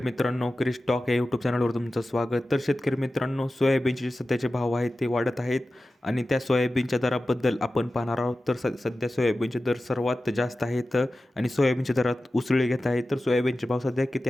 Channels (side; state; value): both; normal; correlation 0.94